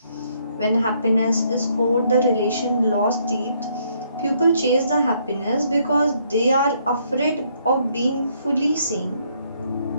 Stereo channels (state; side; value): inverted; both; correlation -0.70